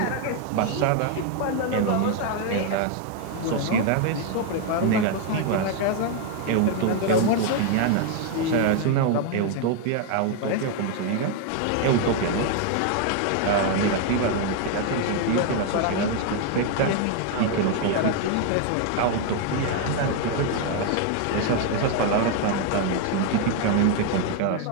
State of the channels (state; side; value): different; both; correlation 0.01